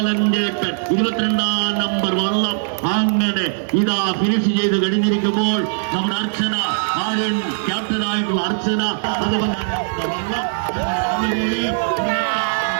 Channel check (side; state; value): left; silent; digital silence